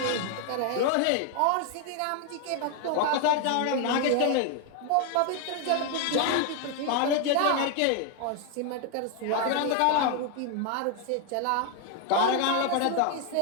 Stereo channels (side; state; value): both; different; correlation 0.00